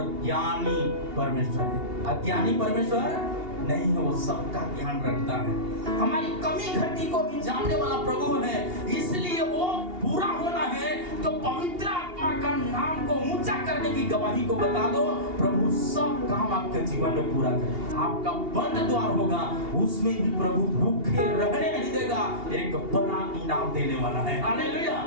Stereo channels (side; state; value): left; late; 2.8 ms